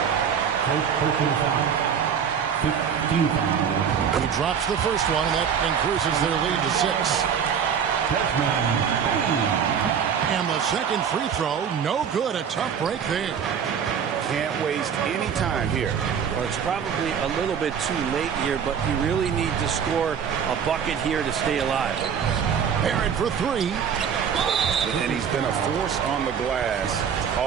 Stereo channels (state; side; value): quieter; left; 7.5 dB